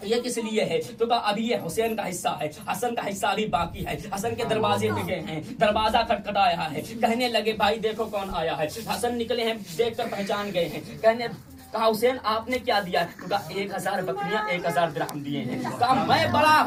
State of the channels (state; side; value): identical; both; correlation 1.00